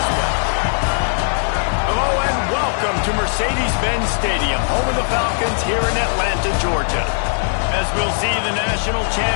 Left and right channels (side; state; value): right; silent; digital silence